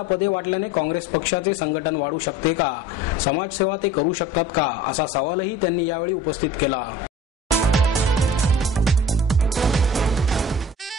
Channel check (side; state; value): both; normal; correlation 0.42